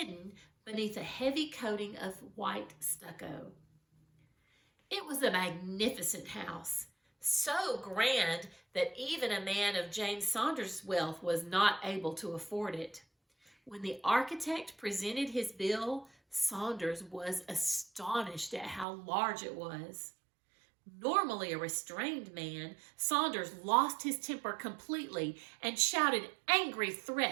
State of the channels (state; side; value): drops out; left; at 18.9 s